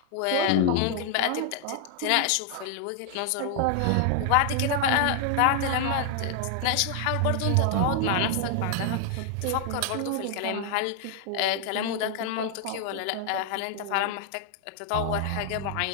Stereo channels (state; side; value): different; both; correlation 0.00